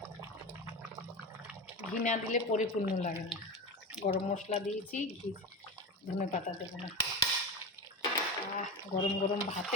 ঘি না দিলে পরিপূর্ণ লাগে না। গরম মশলা দিয়েছি, ঘি, ধনে পাতা দেবো না। গরম গরম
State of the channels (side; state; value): both; normal; correlation 0.23